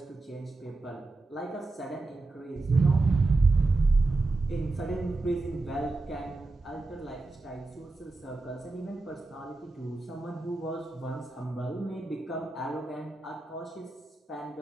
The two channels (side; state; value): left; quieter; 3.2 dB